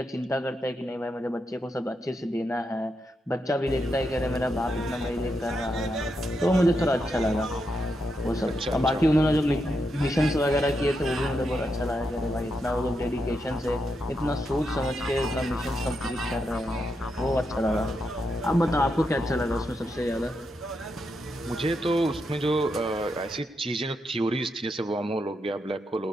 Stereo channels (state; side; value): normal; both; correlation 0.83